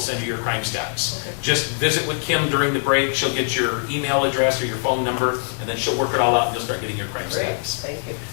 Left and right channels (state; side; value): silent; right; digital silence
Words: you your crime stats. Okay. Just visit with Kim during the break. She'll get your email address or your phone number, and then she'll work it all out, and you'll start getting your crime Great, stats. thank you.